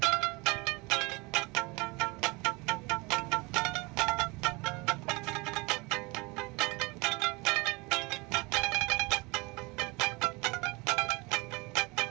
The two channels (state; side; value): quieter; left; 26.2 dB